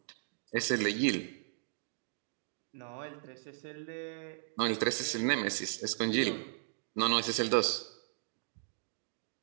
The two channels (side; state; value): left; silent; digital silence